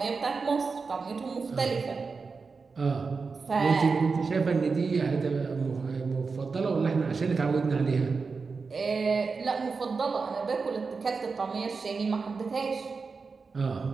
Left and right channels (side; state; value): left; quieter; 4.7 dB